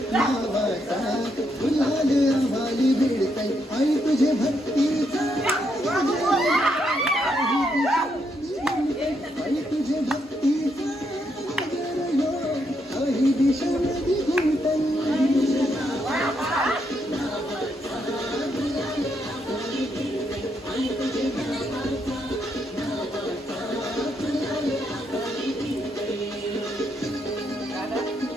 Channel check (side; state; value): both; normal; correlation 0.77